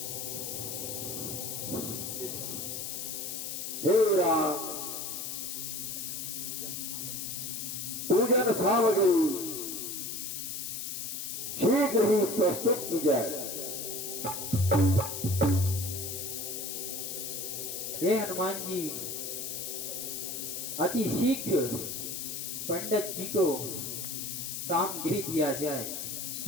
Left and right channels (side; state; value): left; noise; hiss, 5 dB below the sound